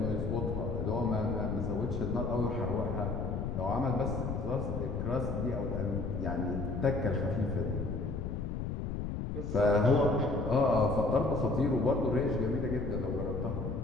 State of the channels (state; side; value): noise; left; rumble, 3 dB below the sound